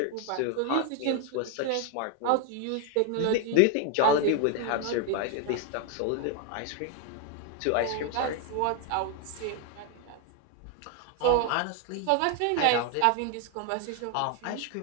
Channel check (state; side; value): different; both; correlation 0.01